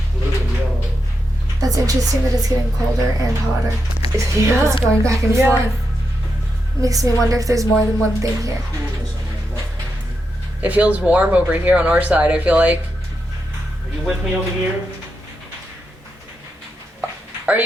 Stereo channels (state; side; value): normal; both; correlation 0.85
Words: blue and yellow. That's interesting that it's getting colder and hotter. Yeah. It's going back and Yeah. forth. Makes me wonder if there's more than one thing here. Coolness on my left. It feels warm over here on our side, I feel like. Are you with me over here? Are